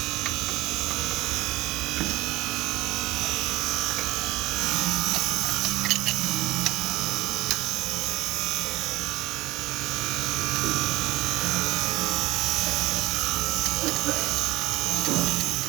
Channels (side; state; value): left; quieter; 19.0 dB